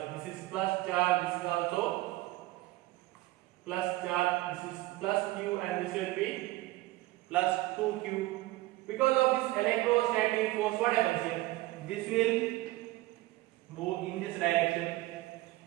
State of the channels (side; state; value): left; quieter; 18.5 dB